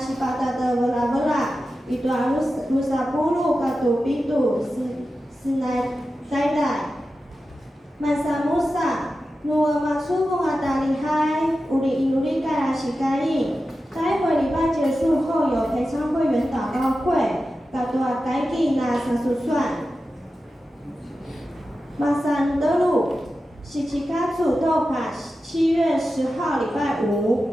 sipata de wala itu harus musapulu katu pitu sinai taidai. Masa Musa no masubu ata lihai uri inuri kara shikai. 待会礼拜结束后有陪参会员祷告会，大多改给那30算。马山德路是七卡祖豆卡7月10号礼拜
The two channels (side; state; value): both; normal; correlation 0.92